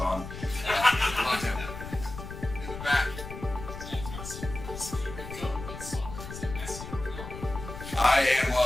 Loved him. In the back. I am a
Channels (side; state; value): left; noise; rumble, 10 dB below the sound